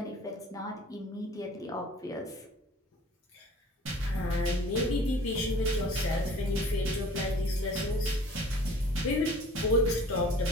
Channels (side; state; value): both; normal; correlation 0.48